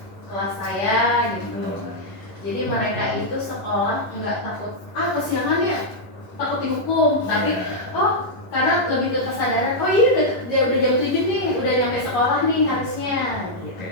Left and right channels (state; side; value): late; right; 11 ms